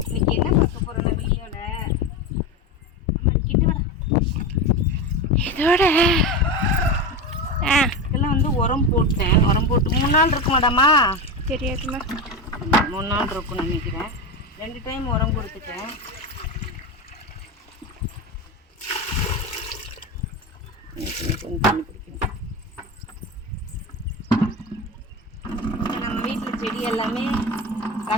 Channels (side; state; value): both; normal; correlation 0.21